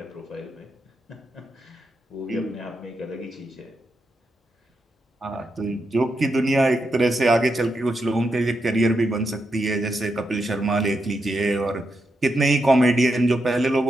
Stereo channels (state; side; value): normal; both; correlation 0.84